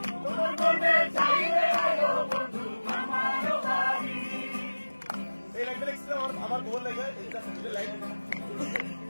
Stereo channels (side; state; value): both; inverted; correlation -1.00